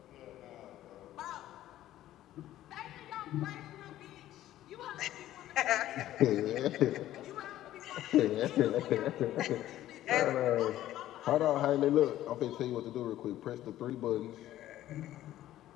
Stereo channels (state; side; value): quieter; right; 13.6 dB